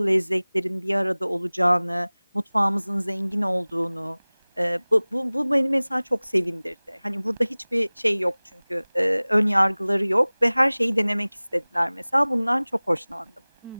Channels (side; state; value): both; inverted; correlation -1.00